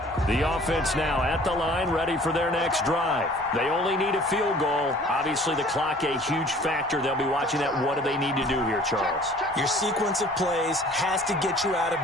The The offense now at the line, ready for their next drive. They only need a field goal. Obviously, the clock a huge factor. They'll be watching that. What do they need to do here, Charles? Your sequence of plays has to get you out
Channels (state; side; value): normal; both; correlation 0.51